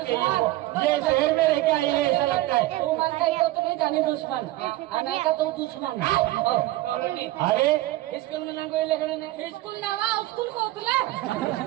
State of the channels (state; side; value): quieter; left; 17.1 dB